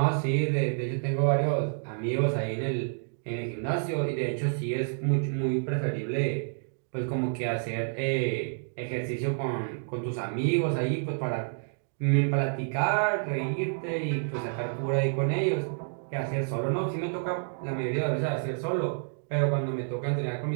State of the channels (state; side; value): silent; left; digital silence